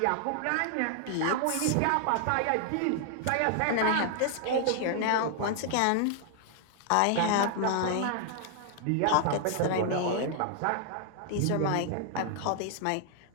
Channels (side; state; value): both; different; correlation 0.00